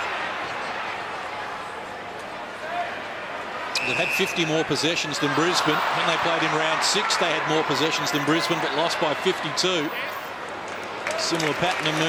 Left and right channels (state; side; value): identical; both; correlation 1.00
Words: They've had 50 more possessions than Brisbane. When they played in round 6, they had more possessions than Brisbane, but lost by 52. Similar pattern